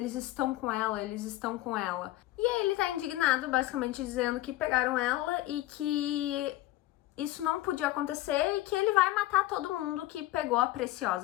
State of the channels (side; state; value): right; quieter; 16.4 dB